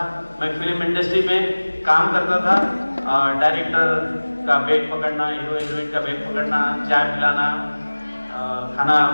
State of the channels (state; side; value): inverted; both; correlation -1.00